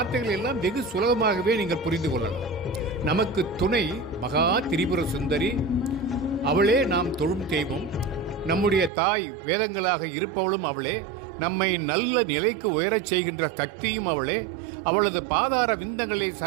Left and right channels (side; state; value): left; drops out; at 8.9 s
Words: எல்லாம் வெகு சுலபமாகவே நீங்கள் புரிந்து கொள்ளலாம். நமக்கு துணை மகா திரிபுர சுந்தரி, அவளே நாம் தொழும் தெய்வம். நம்முடைய தாய் வேதங்களாக இருப்பவளும் அவளே. நம்மை நல்ல நிலைக்கு உயரச் செய்கின்ற சக்தியும் அவளே. அவளது பாதார விந்தங்களே